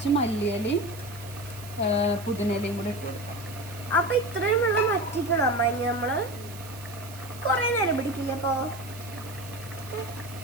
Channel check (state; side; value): noise; right; hiss, 17 dB below the sound